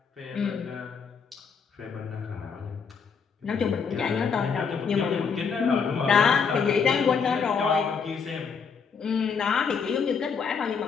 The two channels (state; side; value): quieter; right; 5.9 dB